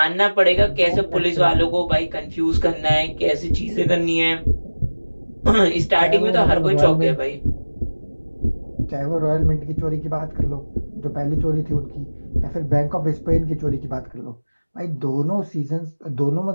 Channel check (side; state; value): both; inverted; correlation -1.00